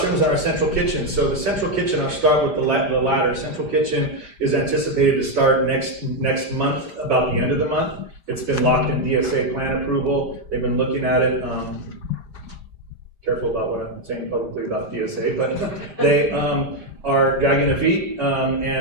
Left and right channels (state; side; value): late; left; 5.0 ms